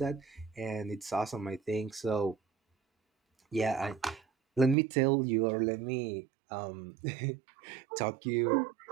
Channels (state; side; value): drops out; left; at 4.8 s